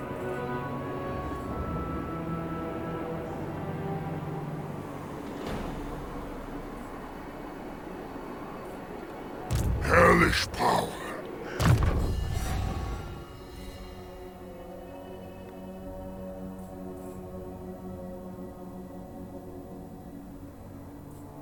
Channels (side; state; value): both; identical; correlation 1.00